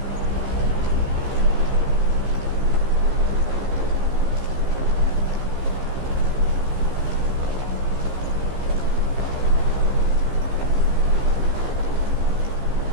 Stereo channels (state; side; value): late; left; 15 ms